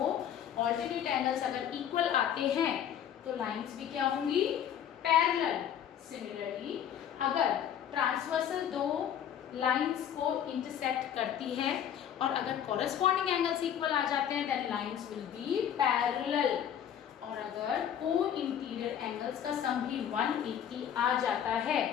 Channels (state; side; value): quieter; right; 9.5 dB